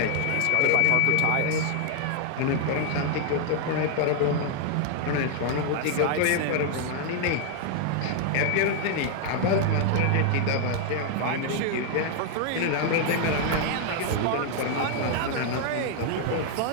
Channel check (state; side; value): different; both; correlation 0.00